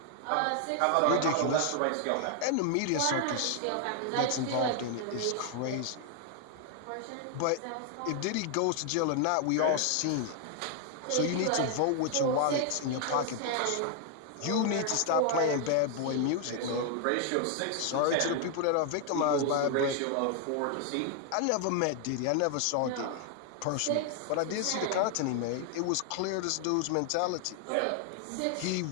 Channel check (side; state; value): both; different; correlation 0.00